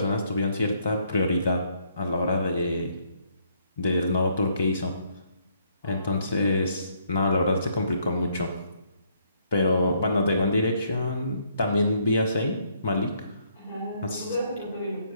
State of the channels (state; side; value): inverted; both; correlation -0.69